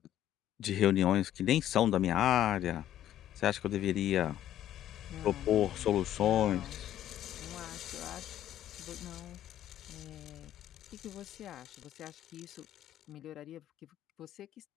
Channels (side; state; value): right; quieter; 12.0 dB